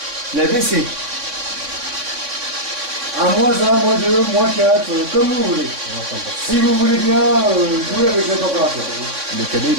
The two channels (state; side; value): late; left; 3.6 ms